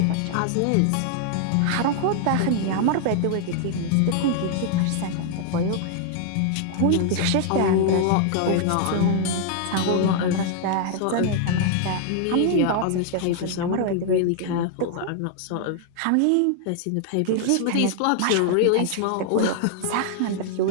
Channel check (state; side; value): different; both; correlation 0.00